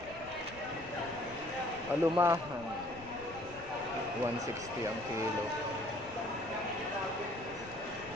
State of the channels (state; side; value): noise; left; rumble, 17 dB below the sound